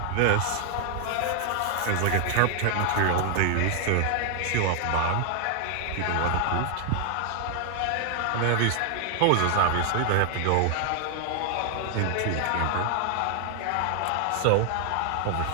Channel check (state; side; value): different; both; correlation 0.00